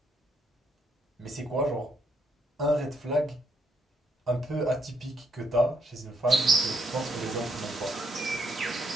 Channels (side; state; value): both; normal; correlation 0.73